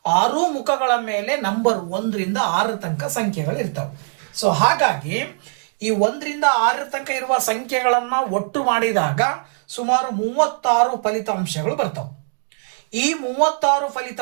6 ಮುಖಗಳ ಮೇಲೆ ನಂಬರ್ 1 ರಿಂದ 6 ತನಕ ಸಂಖ್ಯೆಗಳು ಇರ್ತವೆ. ಸೊ ಹಾಗಾಗಿ ಈ 1 ರಿಂದ 6 ತನಕ ಇರುವ ಸಂಖ್ಯೆಗಳನ್ನ ಒಟ್ಟು ಮಾಡಿದಾಗ ಸುಮಾರು 36 ಫಲಿತಾಂಶಗಳು ಬರ್ತವೆ. ಈ 36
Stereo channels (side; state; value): left; silent; digital silence